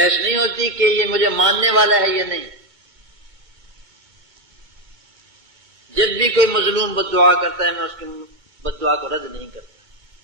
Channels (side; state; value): left; late; 2.2 ms